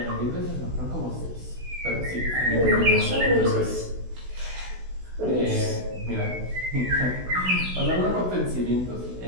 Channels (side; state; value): left; late; 16 ms